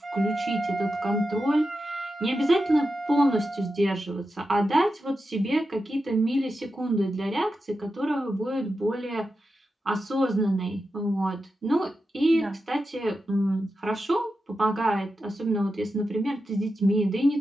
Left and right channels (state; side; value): normal; both; correlation 0.90